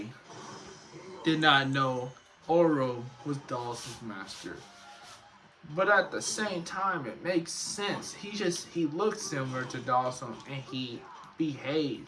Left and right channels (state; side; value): identical; both; correlation 1.00